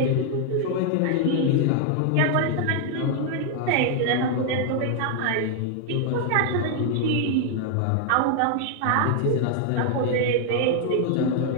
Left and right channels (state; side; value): different; both; correlation 0.00